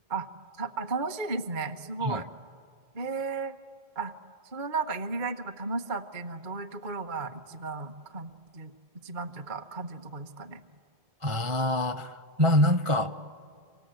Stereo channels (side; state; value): left; late; 1.4 ms